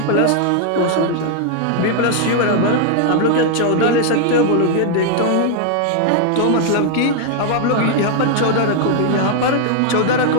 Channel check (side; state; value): both; different; correlation 0.00